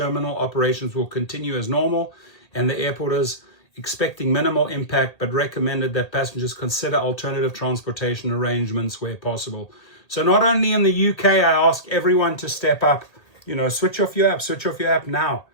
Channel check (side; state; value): right; late; 1.8 ms